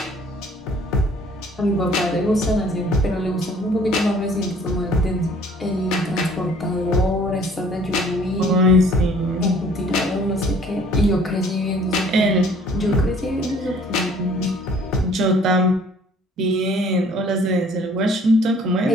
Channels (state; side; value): normal; both; correlation 0.55